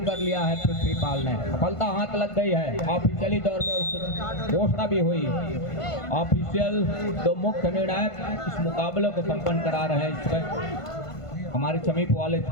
कर लिया है पृथ्वीपाल ने। सफलता हाथ लग गई है। ऑफिशियली तौर पर घोषणा भी हुई। ऑफिशियल 2 मुख्य निर्णायक इस मुकाबले को संपन्न करा रहे हैं। इसमें हमारे समीप वाले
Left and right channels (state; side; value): late; right; 1.5 ms